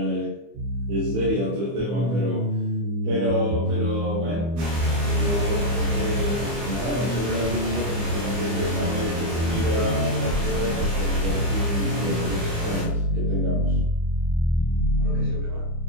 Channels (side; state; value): left; late; 25 ms